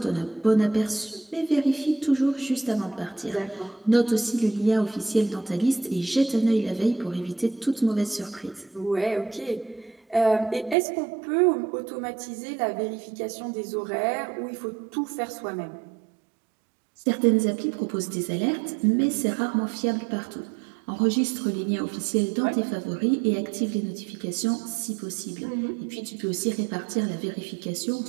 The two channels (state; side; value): drops out; left; at 10.8 s